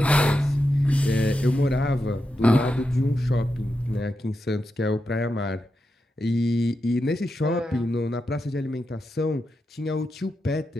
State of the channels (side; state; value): both; normal; correlation 0.87